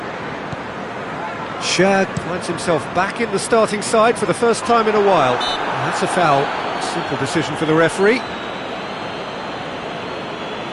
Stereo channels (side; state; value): both; identical; correlation 1.00